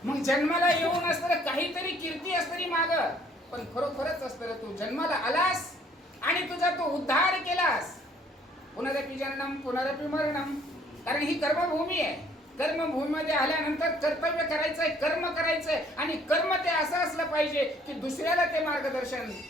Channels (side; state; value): both; normal; correlation 0.60